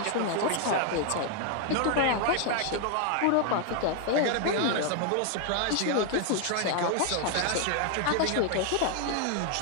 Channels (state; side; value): different; both; correlation 0.00